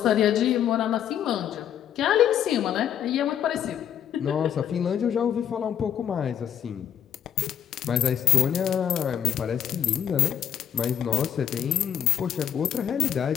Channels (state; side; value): quieter; right; 9.6 dB